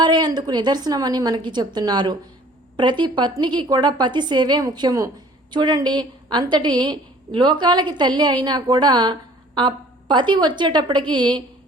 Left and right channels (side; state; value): both; normal; correlation 0.52